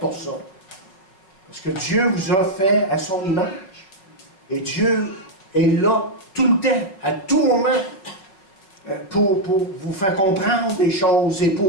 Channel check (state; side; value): late; right; 5.4 ms